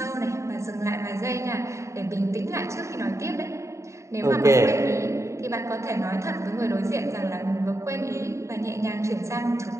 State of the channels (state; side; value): late; left; 0.14 ms